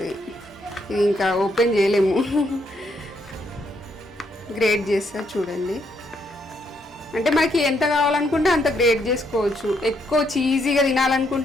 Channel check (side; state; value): both; normal; correlation 0.75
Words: ఇది ఇంకా ఓపెన్ చేయలేము, గ్రేట్ చేస్తా చూడండి. అంటే మనకి ఎంత కావాలనుకుంటే అంత గ్రేట్ చేసుకోవచ్చు. ఎక్కువ చీజీగా